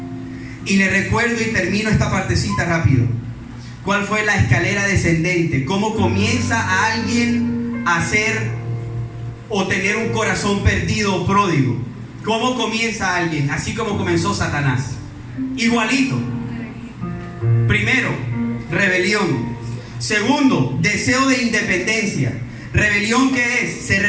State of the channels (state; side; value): identical; both; correlation 1.00